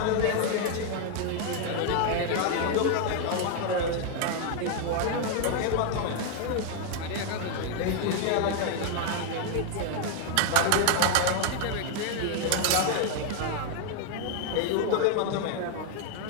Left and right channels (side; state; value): both; different; correlation 0.00